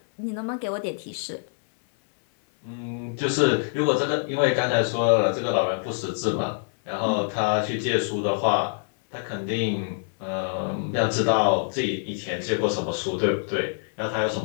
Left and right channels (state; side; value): silent; right; 60 dB below the other